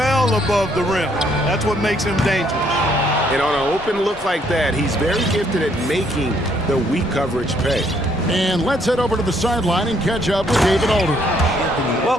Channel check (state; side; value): normal; both; correlation 0.68